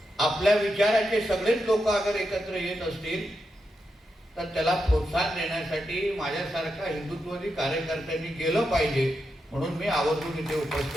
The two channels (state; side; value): normal; both; correlation 0.86